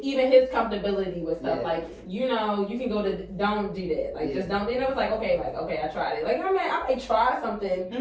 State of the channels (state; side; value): identical; both; correlation 1.00